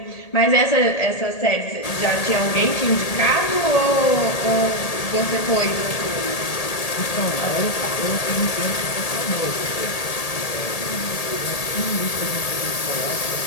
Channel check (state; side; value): late; right; 1.8 ms